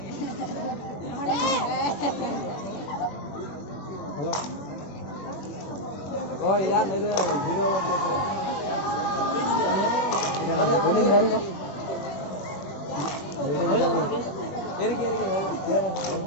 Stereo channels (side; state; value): right; late; 21 ms